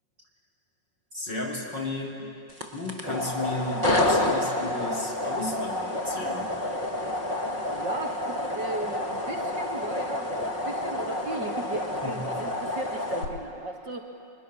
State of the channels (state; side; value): late; left; 5.5 ms